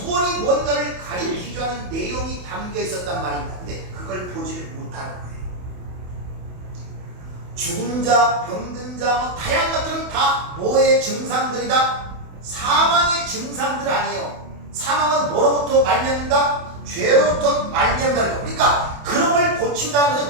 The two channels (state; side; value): late; left; 28 ms